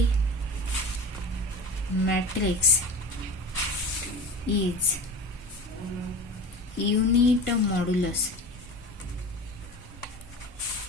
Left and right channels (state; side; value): normal; both; correlation 0.34